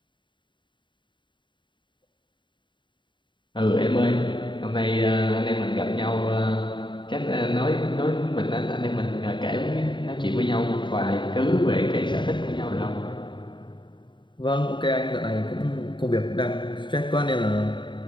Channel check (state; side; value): late; right; 0.23 ms